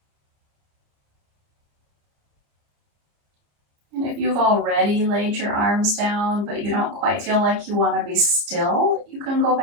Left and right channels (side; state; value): left; late; 29 ms